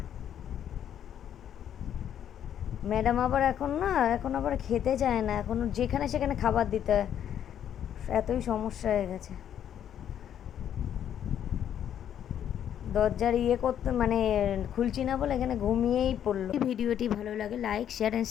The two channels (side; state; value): right; quieter; 9.8 dB